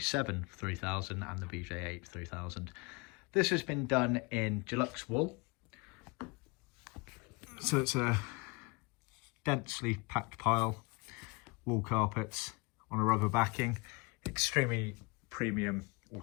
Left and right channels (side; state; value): right; quieter; 27.8 dB